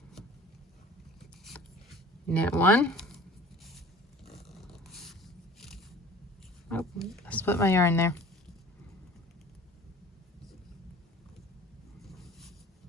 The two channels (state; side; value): normal; both; correlation 0.45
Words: knit 1. Oh, I split my yarn there.